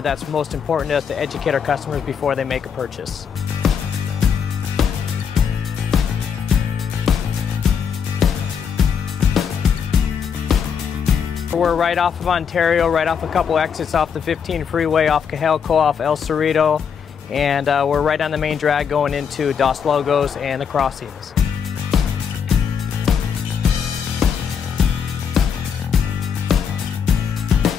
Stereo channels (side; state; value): right; quieter; 7.1 dB